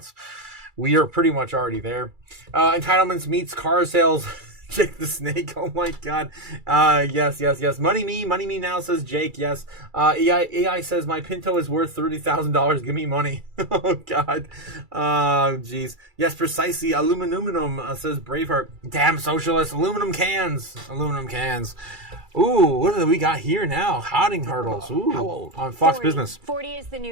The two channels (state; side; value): late; left; 2.3 ms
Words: we are pretty much already there. Entitlements meets car sales. Jake the Snake. Oh my God. Yes. Money me now, says Jake. Yes. AI says my Pinto is worth $30,000. Give me money. Oh God. Jeez. Yes, precisely. Aluminum, says Braveheart. Damn socialists. Aluminum cans. Ooh, what do we got here now? Hodding hurdles. Ooh. How old? On Fox 40. Business. 40 is the